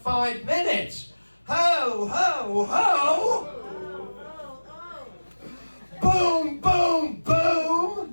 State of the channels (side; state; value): both; inverted; correlation -1.00